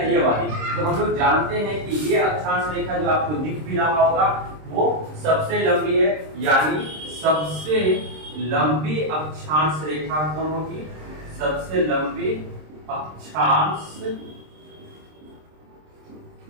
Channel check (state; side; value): late; left; 26 ms